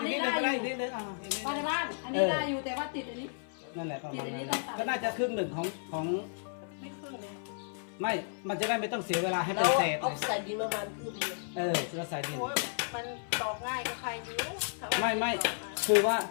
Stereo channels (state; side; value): silent; right; 55 dB below the other